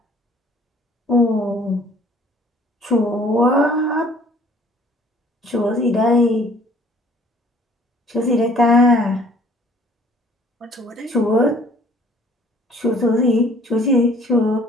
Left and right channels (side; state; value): both; normal; correlation 0.57